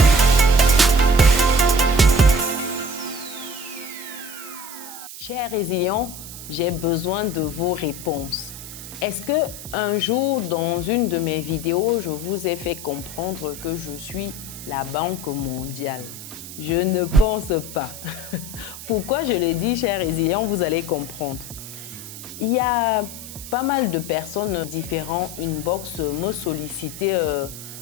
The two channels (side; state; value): right; noise; hiss, 12 dB below the sound